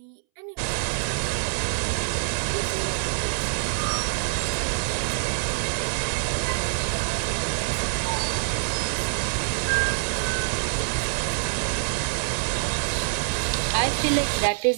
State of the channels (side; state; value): left; silent; 61 dB below the other